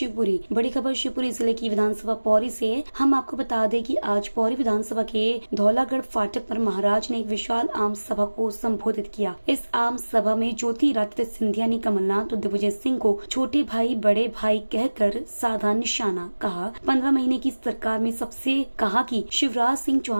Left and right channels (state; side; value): inverted; both; correlation -1.00